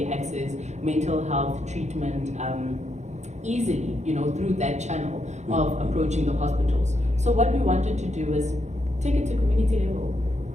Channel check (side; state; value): left; late; 0.33 ms